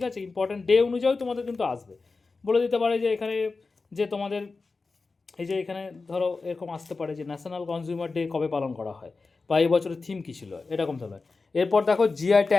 আছে, ইম্পর্টেন্ট ডে অনুযায়ী তোমাদের কিন্তু আসবে। বলে দিতে পারে যে এখানে যে তোমাদের এই যে এখানে ধরো এরকম আসতে পারে যে ন্যাশনাল কনজিউমার ডে কবে পালন করা হয়, বা এই বছরের থিম কী ছিল, এরকম ধরনের। এরপর দেখো জিআই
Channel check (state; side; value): quieter; right; 4.0 dB